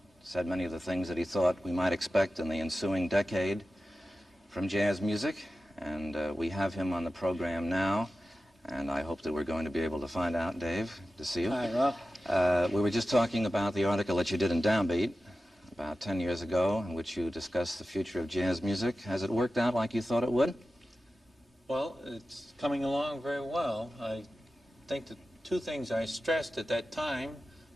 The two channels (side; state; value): both; normal; correlation 0.94